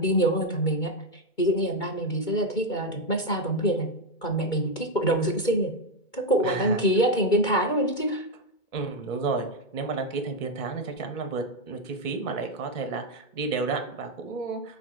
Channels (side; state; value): right; late; 2.2 ms